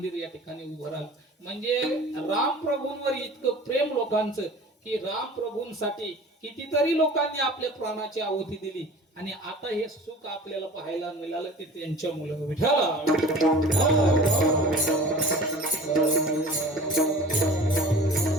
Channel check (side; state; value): both; normal; correlation 0.42